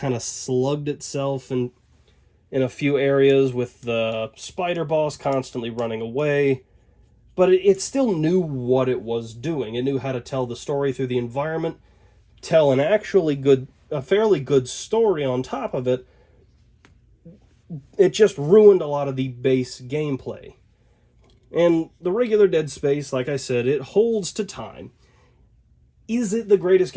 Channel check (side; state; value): both; identical; correlation 1.00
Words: of slugged itself in a few areas with the spider boss constantly running away. But it still knew what it was doing. It knew how to tell the story through the environment, tell a fairly good story on top of it. It just ruined a lot of the base gameplay. And the regular Dead Space, like I said, it holds to time. Is it the greatest